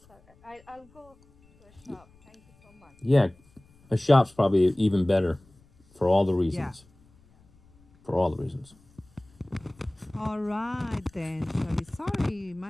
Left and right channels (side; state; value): left; noise; rumble, 30 dB below the sound